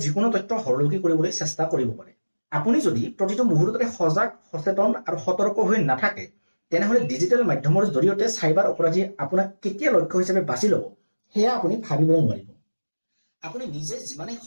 যিকোনো তথ্য হৰলুকি কৰিবলৈ চেষ্টা কৰিব পাৰে। আপুনি যদি প্ৰতিটো মুহূৰ্ততে সজাগ, সচেতন আৰু সতৰ্ক হৈ নাথাকে তেনেহ'লে ডিজিটেল মাধ্যমৰ জৰিয়তে চাইবাৰ অপৰাধীয়ে আপোনাক কেতিয়া লক্ষ্য হিচাপে বাছি ল'ব সেয়া আপুনি ভাবিবও নোৱাৰিব। আপুনি নিজে যিমানেই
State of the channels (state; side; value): inverted; both; correlation -1.00